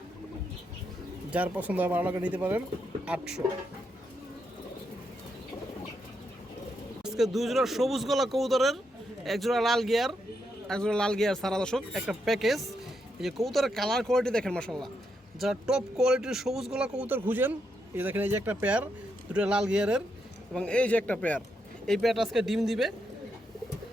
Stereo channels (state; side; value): normal; both; correlation 0.81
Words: যার পছন্দ হয় ভালো লাগে নিতে পারেন, 800। আজকে 2 জোড়া সবুজ গলা কবুতরের, এক জোড়া লাল গিয়ার, এক জোড়া লাল গিয়ার সারা দর্শক, একটা প্যাকেজ। এই যে কবুতরের কালার কোয়ালিটি দেখেন, মাশাআল্লাহ। যারা টপ কোয়ালিটির সবুজ গলা কবুতর খুঁজেন, এই দেখেন এই যে একটা পেয়ার, দুটো লাল গিয়ারের, এবং এই যে একটা পেয়ার। এই পেয়ারটা আজকে ডিম দিবে।